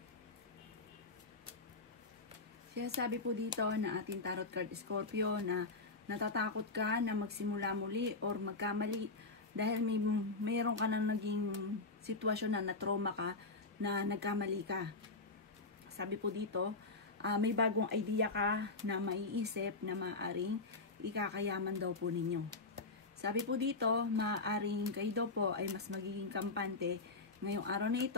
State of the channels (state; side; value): quieter; right; 3.6 dB